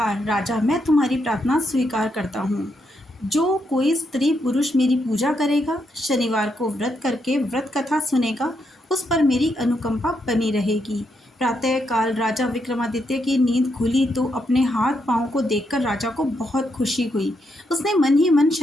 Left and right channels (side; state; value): both; normal; correlation 0.79